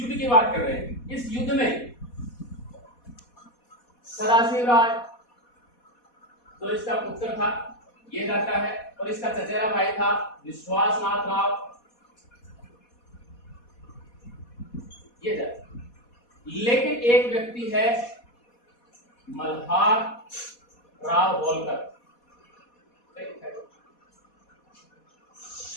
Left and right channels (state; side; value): late; right; 4.2 ms